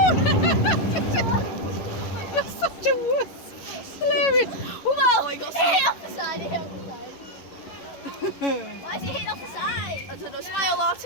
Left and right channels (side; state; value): right; late; 11 ms